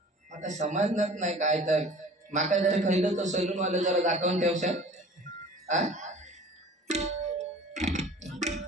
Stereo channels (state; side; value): normal; both; correlation 0.45